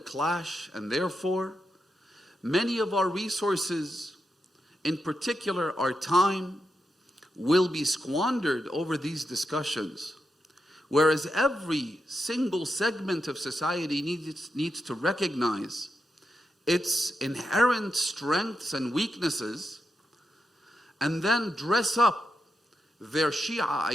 and therefore, many of our resources, in particular our time, will be squandered over these discussions. Whereas every single segment of society needs to recognize its inherent strengths and weaknesses, and then dress up their Shia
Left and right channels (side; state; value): both; normal; correlation 0.86